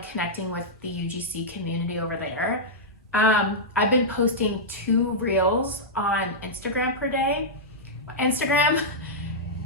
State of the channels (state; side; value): normal; both; correlation -0.09